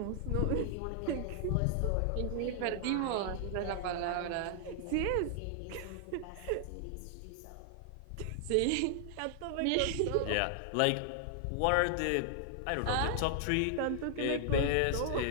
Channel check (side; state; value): both; different; correlation 0.00